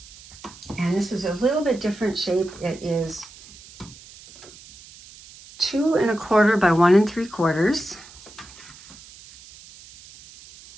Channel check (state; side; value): noise; right; hiss, 20 dB below the sound